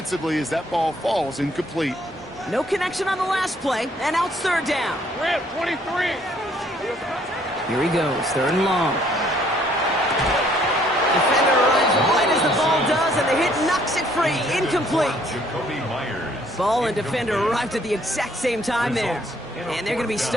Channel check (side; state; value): both; normal; correlation 0.63